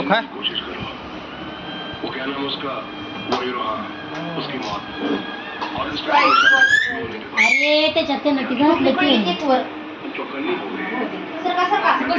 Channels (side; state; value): both; identical; correlation 1.00